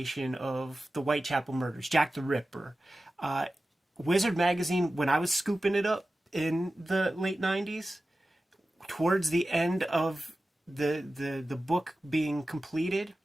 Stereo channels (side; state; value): both; normal; correlation 0.95